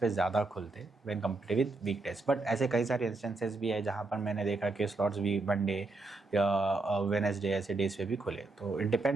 ज़्यादा खुलते when compare with weekdays, but ऐसे कई सारे इंस्टेंसेस भी है जहाँ पर मैंने देखा कि स्लॉट्स भी मंडे या वेडनेसडे ऐसे डेज पे भी खुले। तो it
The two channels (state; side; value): quieter; left; 3.3 dB